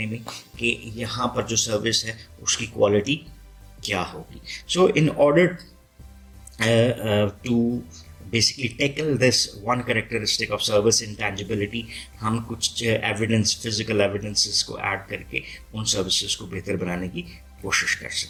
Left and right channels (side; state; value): both; identical; correlation 1.00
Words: में कि यहाँ पर जो सर्विस है उसकी क्वालिटी क्या होगी. So in order to basically tackle this one characteristic of service intangibility, हम कुछ एविडेंस, फिजिकल एविडेंसेस को ऐड करके उन सर्विसेज को बेहतर बनाने की कोशिश कर